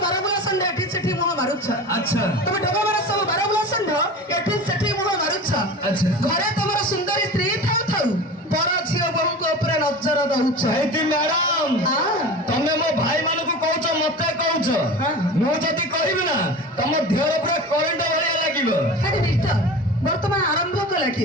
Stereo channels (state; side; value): normal; both; correlation 0.33